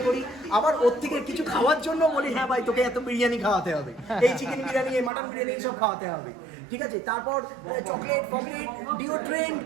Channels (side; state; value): left; drops out; at 5.1 s